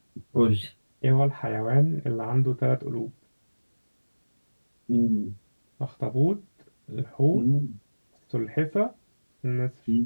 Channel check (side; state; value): both; inverted; correlation -1.00